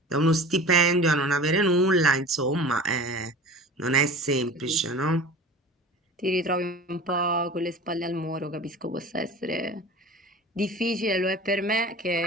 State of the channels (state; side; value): normal; both; correlation 0.38